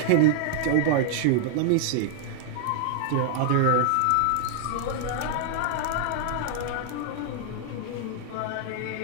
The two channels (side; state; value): both; different; correlation -0.01